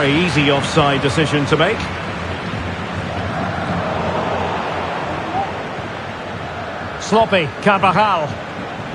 easy offside decision to make. Sloppy, Carvajal.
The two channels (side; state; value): both; identical; correlation 1.00